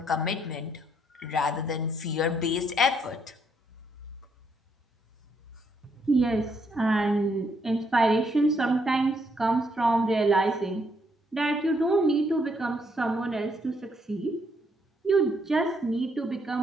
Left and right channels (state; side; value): normal; both; correlation 0.73